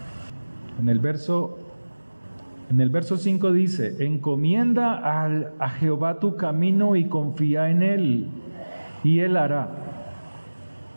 en el verso 5 dice, encomienda a Jehová tu camino y confía en Él, y Él hará.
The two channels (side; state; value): both; inverted; correlation -1.00